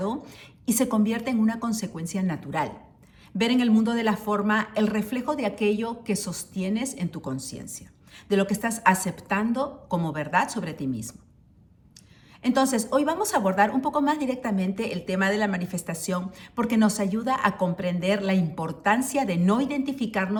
y se convierte en una consecuencia natural. Ver en el mundo de la forma el reflejo de aquello que sostienes en tu conciencia, de lo que estás aceptando como verdad sobre ti mismo. Entonces, hoy vamos a abordar un poco más directamente el tema de la manifestación porque nos ayuda a comprender la importancia de no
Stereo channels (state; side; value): identical; both; correlation 1.00